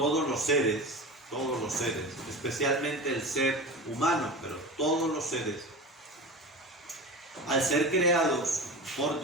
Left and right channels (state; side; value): normal; both; correlation 0.30